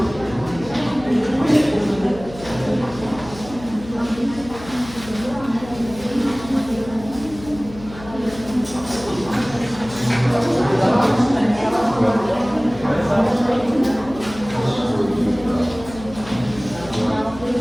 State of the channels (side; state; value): left; noise; hum, 16 dB below the sound